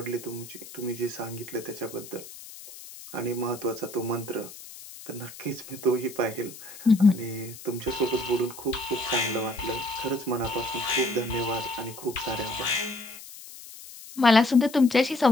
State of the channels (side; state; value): left; noise; hiss, 15 dB below the sound